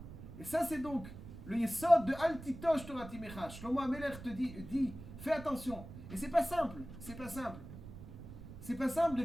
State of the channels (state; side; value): noise; right; rumble, 13 dB below the sound